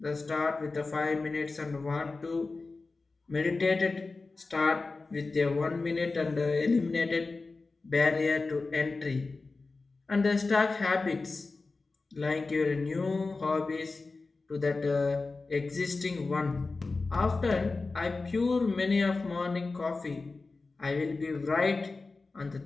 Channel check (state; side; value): quieter; right; 3.7 dB